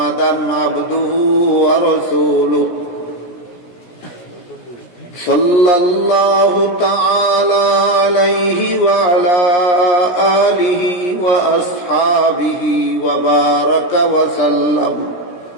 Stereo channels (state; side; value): late; right; 16 ms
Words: عبده ورسوله صلى الله تعالى عليه وعلى آله وأصحابه وبارك وسلم